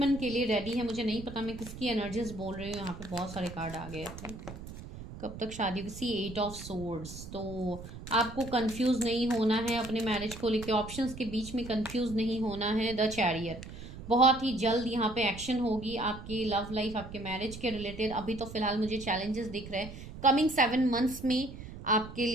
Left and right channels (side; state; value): right; noise; rumble, 12 dB below the sound